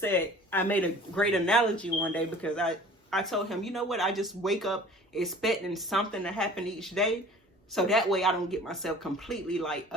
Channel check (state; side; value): normal; both; correlation 0.46